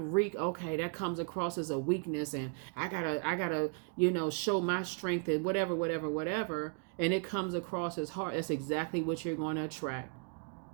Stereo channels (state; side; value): quieter; left; 37.9 dB